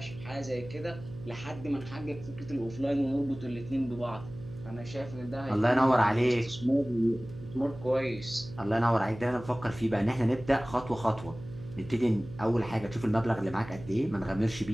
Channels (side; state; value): right; noise; hum, 14 dB below the sound